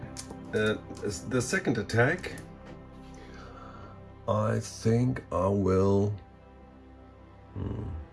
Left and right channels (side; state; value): both; identical; correlation 1.00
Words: the second attack, I think I will